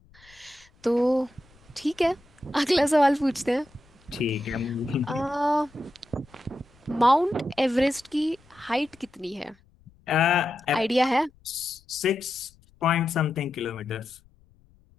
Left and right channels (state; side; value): noise; left; rumble, 29 dB below the sound